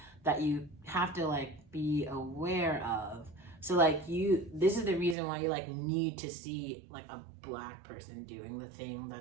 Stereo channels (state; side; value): drops out; left; at 5.2 s